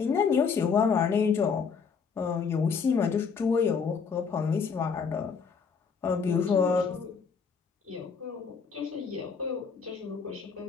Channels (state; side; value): quieter; right; 5.9 dB